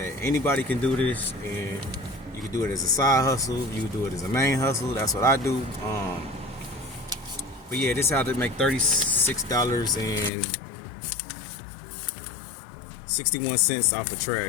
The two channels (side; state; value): right; drops out; at 10.3 s